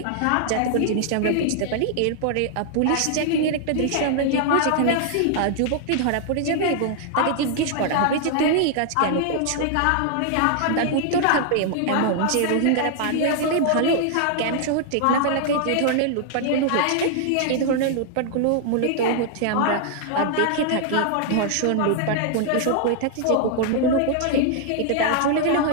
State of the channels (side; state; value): both; different; correlation -0.01